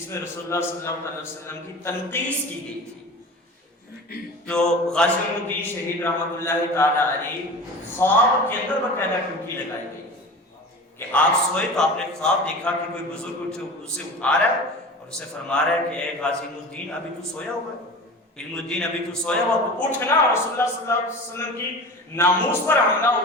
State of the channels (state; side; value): normal; both; correlation 0.34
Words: میں رسول اللہ صلی اللہ علیہ وسلم کی تنقیص کی گئی تھی، تو غازی الدین شہید رحمۃ اللہ تعالیٰ علیہ خواب کے اندر باقاعدہ ٹوٹی لگائی گئی کہ آپ سوئے تو آپ نے خواب دیکھا کہ کوئی بزرگ اسے اٹھا رہا ہے اور اسے فرما رہا ہے کہ اے غازی الدین ابھی تو سویا ہوا ہے، علم الدین ابھی تو سویا ہوا تو اٹھنا، رسول اللہ صلی اللہ علیہ وسلم کی ناموس پر حملہ